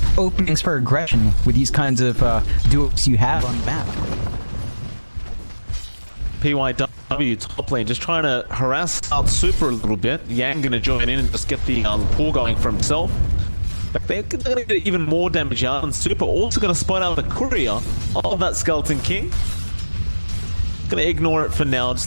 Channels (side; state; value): both; inverted; correlation -1.00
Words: openings for aggression with these kinds of duos you have on the map. PYW top lane just trying to harass out Super a little bit. Yang going to join in and just get the pull going for himself. But they're going to get even more damage out, and Super also going to spot out the courier of that Skeleton King. Going to ignore it for now,